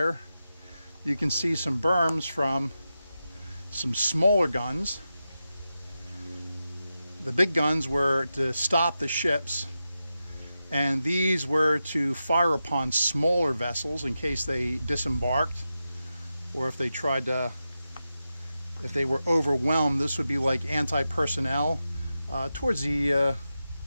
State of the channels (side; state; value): both; inverted; correlation -0.90